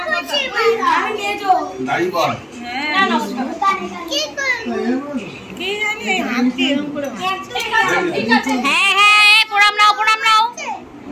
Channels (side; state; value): both; identical; correlation 1.00